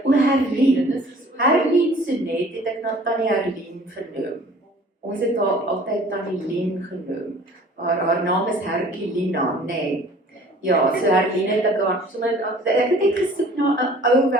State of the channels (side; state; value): both; normal; correlation 0.50